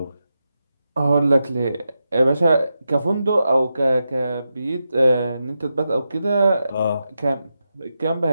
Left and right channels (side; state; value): both; inverted; correlation -0.88